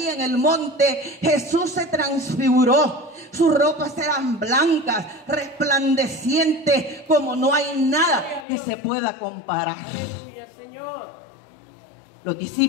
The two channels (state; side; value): drops out; right; at 8.5 s